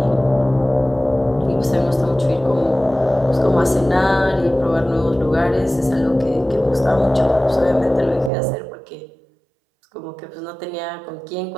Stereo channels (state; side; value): drops out; left; at 8.3 s